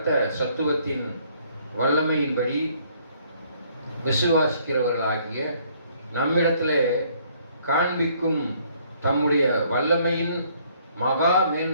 சத்துவத்தின் வல்லமையின்படி விசுவாசிக்கிறவர்களாகிய நம்மிடத்திலே காண்பிக்கும் தம்முடைய வல்லமையின் மகா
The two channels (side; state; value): both; inverted; correlation -0.63